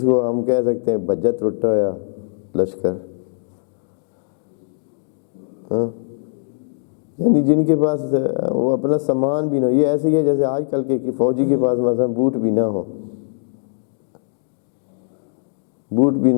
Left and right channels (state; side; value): silent; right; digital silence